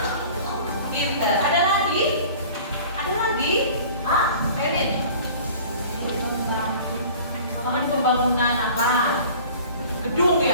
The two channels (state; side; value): inverted; both; correlation -0.45